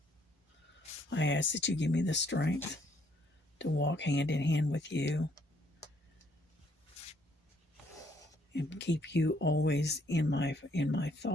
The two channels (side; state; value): both; normal; correlation 0.67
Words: I ask that you give me the strength to walk hand in hand with you and keep you always in my